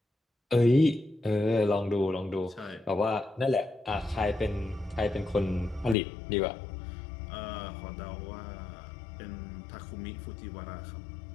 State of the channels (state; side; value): drops out; right; at 6.0 s